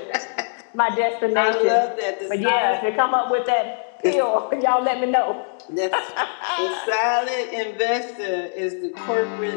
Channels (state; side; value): silent; right; digital silence